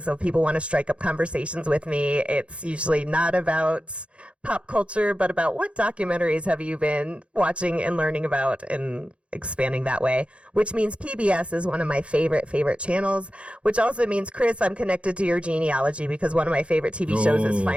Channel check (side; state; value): left; late; 0.059 ms